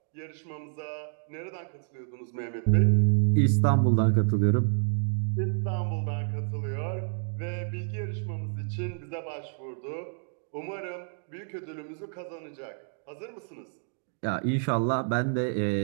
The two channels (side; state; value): left; silent; 59 dB below the other